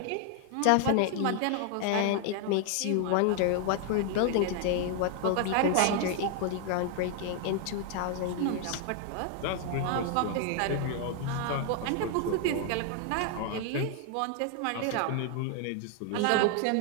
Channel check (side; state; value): both; different; correlation 0.00